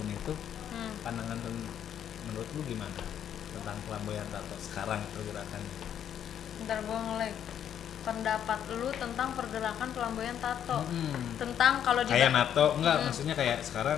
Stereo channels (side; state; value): right; quieter; 9.5 dB